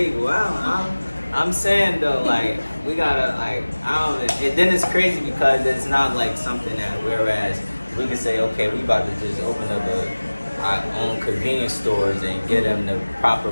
wow. I'm saying though, like we gotta like I don't. And then it's crazy because it's not like something that whereas we can say okay, we about to just open up our own convenience stores and get them the proper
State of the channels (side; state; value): both; inverted; correlation -1.00